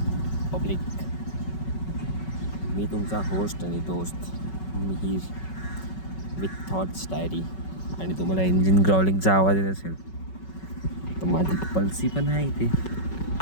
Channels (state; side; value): late; right; 5.3 ms